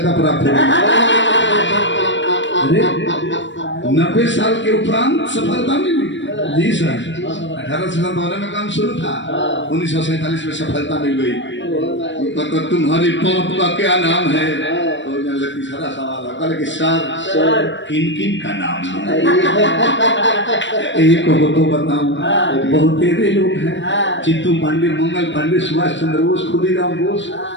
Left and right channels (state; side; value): late; right; 0.54 ms